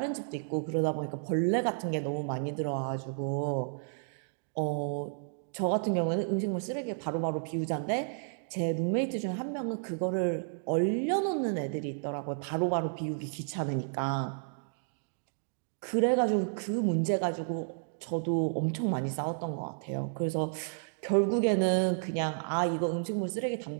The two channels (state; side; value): silent; left; digital silence